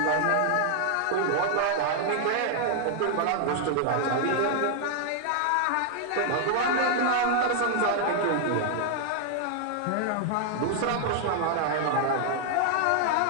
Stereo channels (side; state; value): both; different; correlation 0.00